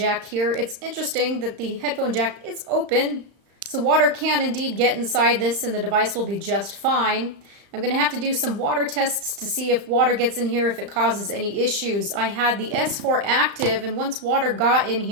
here. It's interesting that the headphone jack is open, so water can indeed get inside this and the device will be just fine. I'm going to have to do some water tests to see if water gets in here, if it causes any issues. I had the S4 active, and once water got in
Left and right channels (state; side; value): late; left; 35 ms